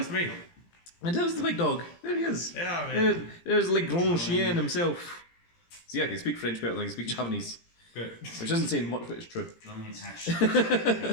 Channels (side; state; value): right; late; 17 ms